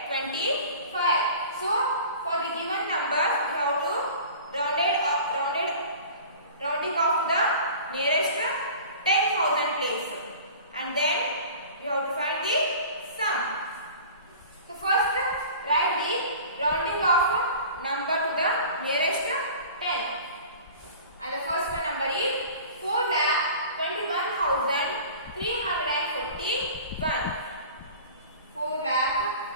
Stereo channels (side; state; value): both; inverted; correlation -0.41